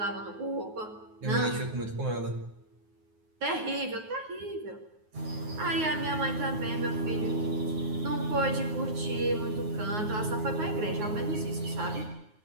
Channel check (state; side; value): late; left; 9.5 ms